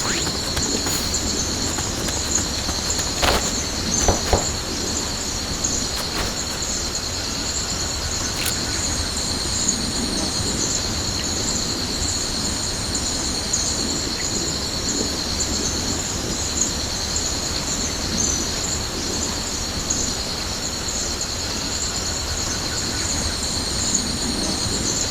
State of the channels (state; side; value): identical; both; correlation 1.00